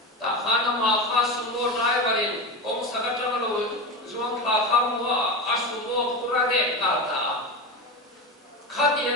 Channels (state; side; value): normal; both; correlation 0.21